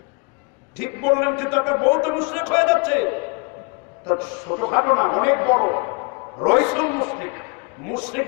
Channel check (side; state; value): right; quieter; 32.4 dB